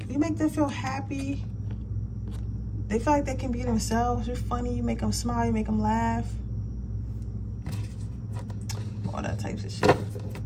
You make them feel happy. They feel like they can be themselves. You're funny. You make them smile. You make them laugh. all that types of shit.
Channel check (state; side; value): identical; both; correlation 1.00